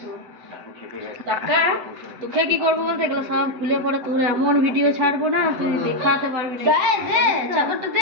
তোকে কি করবো বলতে এগুলো সব খুলে পরে তোর এমন ভিডিও ছাড়বো না তুই দেখাতে পারবি না। দে চাদরটা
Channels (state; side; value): late; left; 7.8 ms